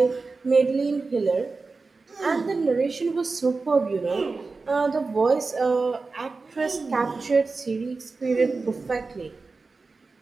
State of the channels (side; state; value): left; quieter; 4.0 dB